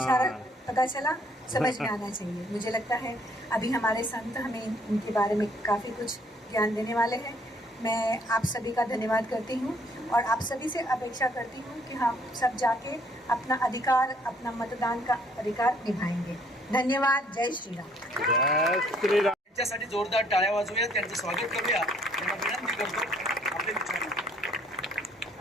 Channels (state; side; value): normal; both; correlation 0.63